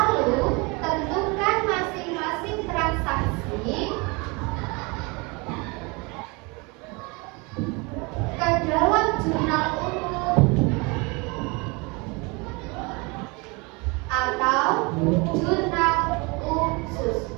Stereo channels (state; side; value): quieter; left; 28.2 dB